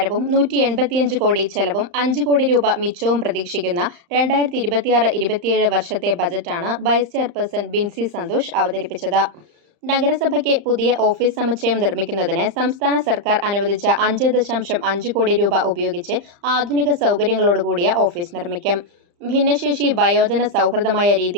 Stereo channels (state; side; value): late; left; 35 ms